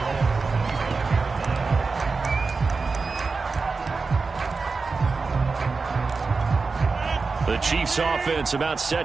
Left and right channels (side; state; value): left; quieter; 4.3 dB